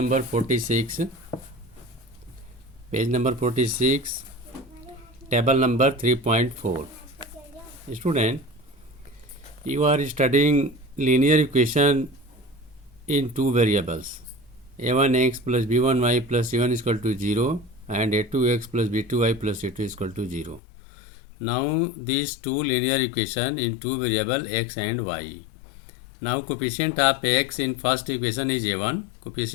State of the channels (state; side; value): drops out; right; at 20.6 s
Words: 46, table number 3.4. Student, you are studying linear equation in two variables, a1x plus b1y plus c1 is equal to 0 and a2x plus b2y plus c2 is equal to 0. Now these two linear equation in two variable x and y. Now coefficient of x in first equation is a1,